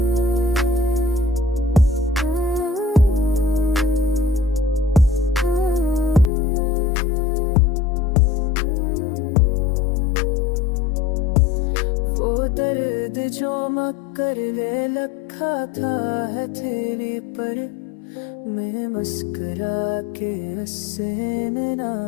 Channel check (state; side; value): drops out; right; at 6.3 s